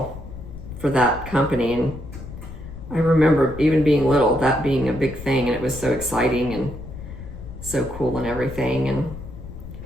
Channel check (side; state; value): left; noise; rumble, 12 dB below the sound